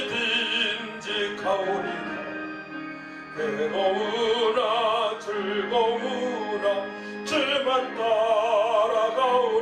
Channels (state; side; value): identical; both; correlation 1.00